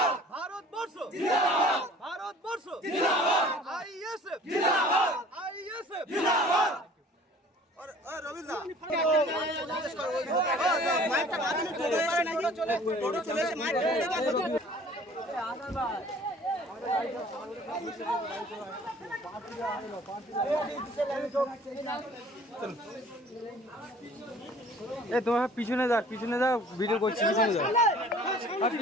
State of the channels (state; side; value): normal; both; correlation 0.50